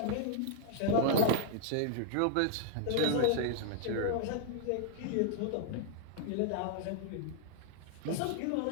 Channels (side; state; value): both; different; correlation -0.01